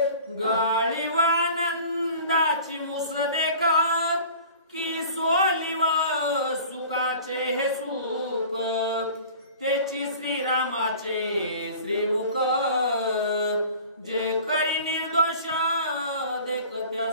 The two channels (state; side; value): inverted; both; correlation -0.43